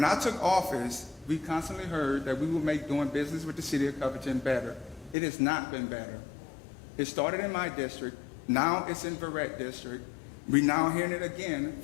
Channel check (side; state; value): right; drops out; at 5.2 s